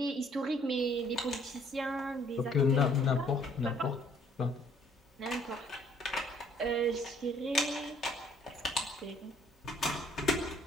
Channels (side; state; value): both; normal; correlation 0.61